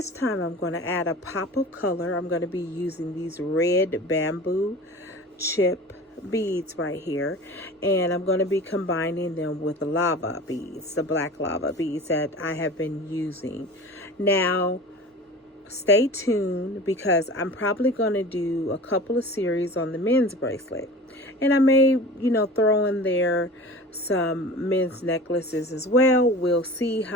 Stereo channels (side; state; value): both; normal; correlation 0.37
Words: time I'm going to add a pop of color. I'm going to be using these red bamboo chip beads right here, and I'm going to be combining them with the lava beads, the black lava beads that I have been using. Now, stay tuned because I'm probably going to do a couple of series on the men's bracelet. And I may, throw in there some men's necklaces as well. We'll see